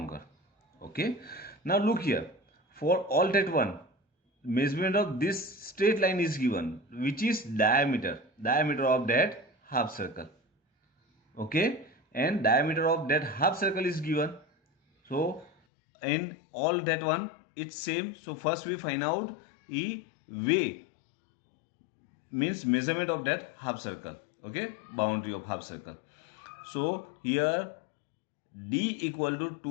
Okay, now look here, for all that one, measurement of this straight line is given, which is diameter of that half circle. Okay, and diameter of that half circle is given. So in all that one it's same. So first we find out E way, means measurement of that half circle. Okay, boundary of half circle. So here D equal to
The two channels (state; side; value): drops out; right; at 15.5 s